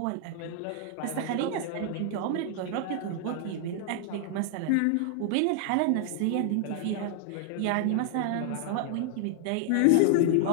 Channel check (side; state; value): both; different; correlation 0.00